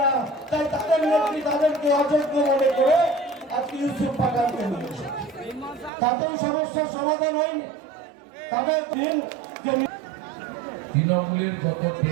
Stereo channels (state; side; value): drops out; left; at 5.9 s